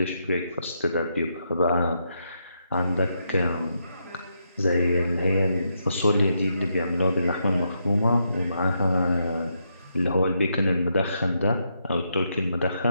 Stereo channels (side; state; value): both; inverted; correlation -0.80